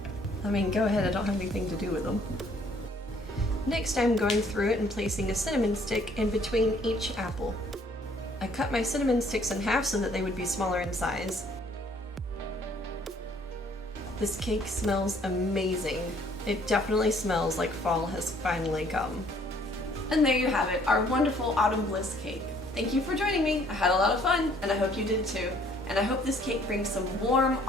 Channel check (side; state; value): both; normal; correlation 0.61